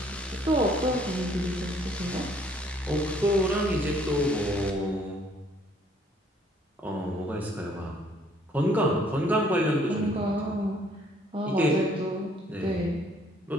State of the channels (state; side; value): normal; both; correlation 0.62